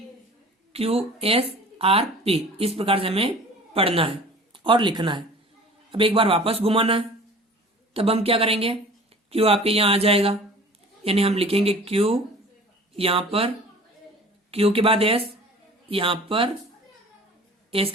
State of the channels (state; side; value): normal; both; correlation 0.45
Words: Q S R P, इस प्रकार से हमें पढ़ना है और लिखना है। अब एक बार वापस घुमाना है, तब हम क्या करेंगे, क्यू आपके यहाँ आ जाएगा, यानी हम लिखेंगे क्यू यहाँ पर, क्यू के बाद एस यहाँ पर, एस